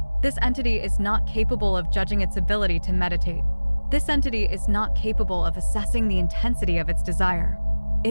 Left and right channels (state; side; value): inverted; both; correlation -1.00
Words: This entity is not capable of judging its ability to meditate. This entity is not capable of assessing the intensity of its desire.